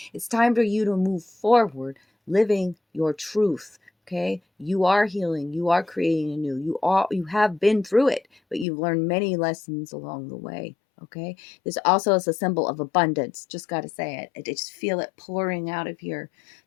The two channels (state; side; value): drops out; right; at 8.7 s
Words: It's time for you to move forward, living your truth. Okay. You are healing. You are creating anew. You have been through it, but you've learned many lessons along the way. Okay. This also is a symbol of abundance. Just got to say it. I just feel it pouring out of here.